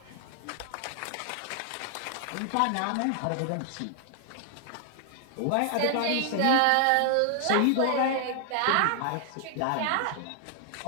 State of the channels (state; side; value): different; both; correlation 0.00